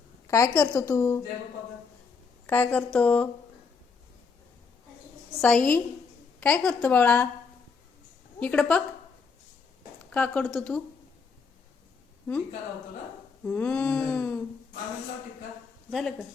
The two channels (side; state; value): right; quieter; 5.1 dB